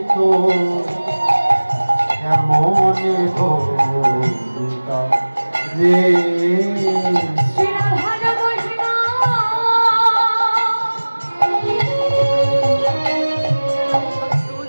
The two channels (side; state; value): both; inverted; correlation -1.00